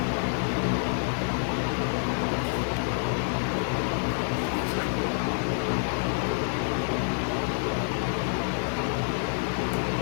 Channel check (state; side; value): silent; right; 60 dB below the other